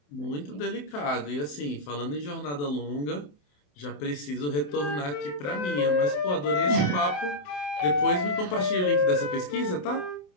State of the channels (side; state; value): right; late; 27 ms